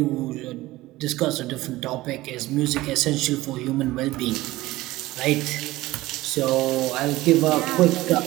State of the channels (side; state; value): left; quieter; 18.0 dB